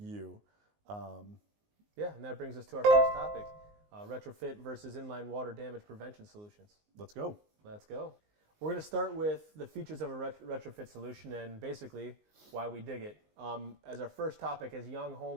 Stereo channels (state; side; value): late; left; 19 ms